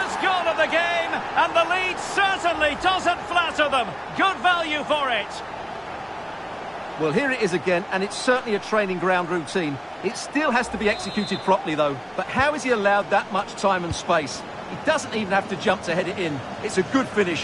goal of the game, and the lead certainly doesn't flatter them. Good value for it. Well, here it is again, and it's certainly a training ground routine. It still has to be executed properly, though. But how has he allowed that much time and space? He doesn't even have to jump to head it in. It's a good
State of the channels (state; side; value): identical; both; correlation 1.00